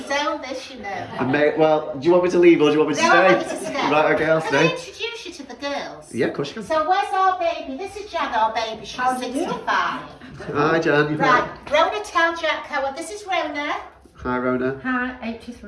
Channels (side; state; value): both; identical; correlation 1.00